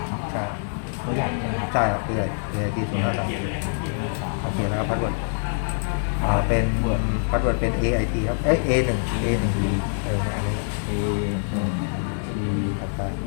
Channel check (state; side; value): silent; right; 62 dB below the other